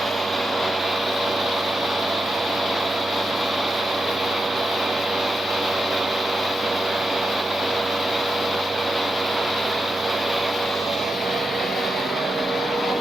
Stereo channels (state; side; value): normal; both; correlation 0.89